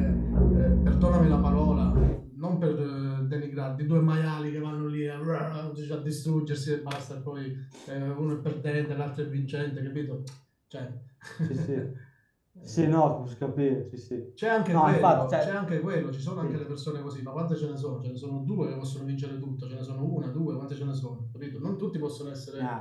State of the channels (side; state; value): both; identical; correlation 1.00